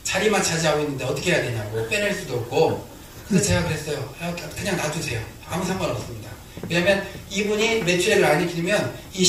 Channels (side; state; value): both; identical; correlation 1.00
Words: 자리만 차지하고 있는데 어떻게 해야 되냐고. 빼낼 수도 없고. 그래서 제가 그랬어요. 그냥 놔두세요. 아무 상관없습니다. 왜냐면 이분이 매출액을 안 일으키면 이